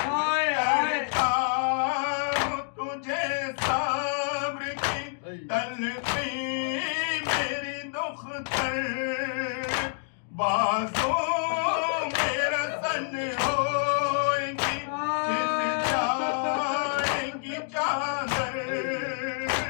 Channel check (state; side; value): silent; right; digital silence